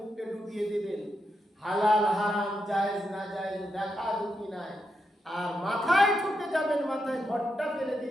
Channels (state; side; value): normal; both; correlation 0.84